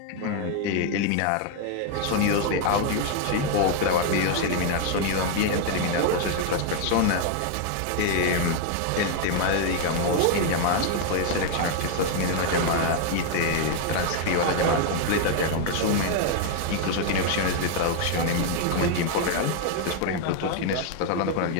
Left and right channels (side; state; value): both; different; correlation 0.00